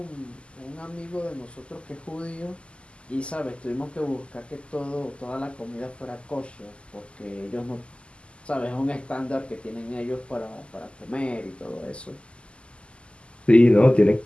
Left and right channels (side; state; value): right; late; 0.053 ms